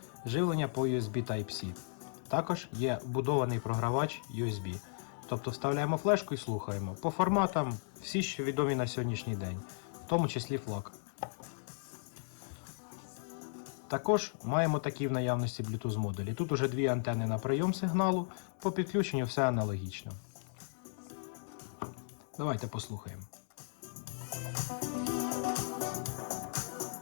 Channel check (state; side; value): silent; right; digital silence